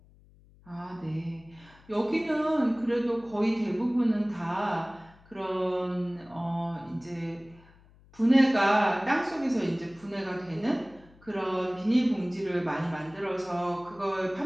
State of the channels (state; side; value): noise; left; hum, 26 dB below the sound